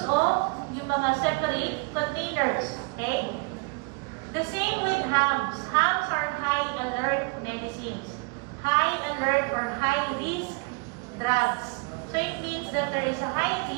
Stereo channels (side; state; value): left; quieter; 30.1 dB